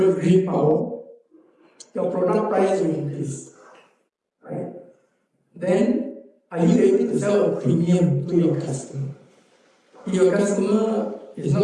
green power, your product price will increase. Right? Then are you able to sell a premium to your customer? If your customer is not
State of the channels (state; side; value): identical; both; correlation 1.00